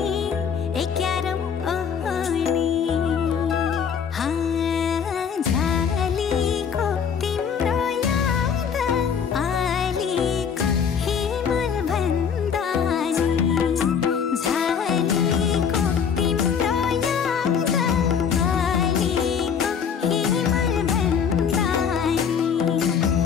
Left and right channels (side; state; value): right; quieter; 7.0 dB